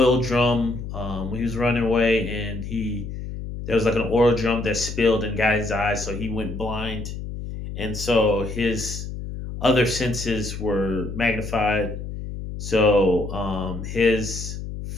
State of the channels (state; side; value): noise; left; hum, 8 dB below the sound